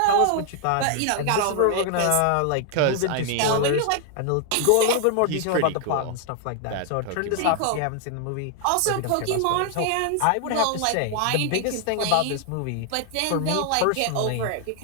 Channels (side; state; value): both; different; correlation 0.00